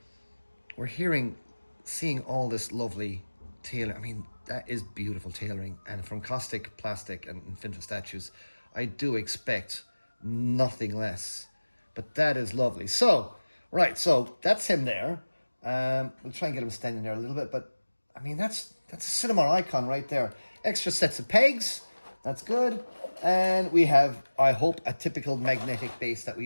we're seeing all this lovely tailor. I mean, that is beautiful tailoring, and from Kaustic Plastik and Infinite Statues, I do expect nothing less. But that is lovely. So, right, so that's him there. We'll try and get him standing there a little bit, but I mean, that's a cinema icon right there. Extra sets of pegs, that's good. And we have, I hope, a typical magnetic base that we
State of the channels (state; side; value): inverted; both; correlation -1.00